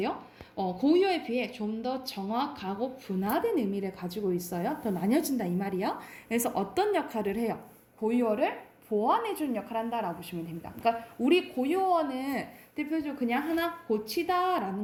고유어에 비해 좀 더 정확하고 분화된 의미를 가지고 있어요. 더 나뉘어진다 이 말이야. 그래서 어떤 역할을 해요? 고유어를 보완해주는 역할을 한다라고 보시면 됩니다. 그러니까 우리 고유어는 대표적으로 그냥 하나 고치다라는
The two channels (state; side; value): identical; both; correlation 1.00